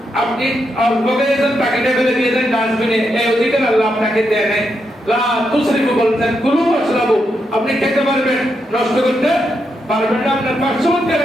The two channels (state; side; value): normal; both; correlation 0.82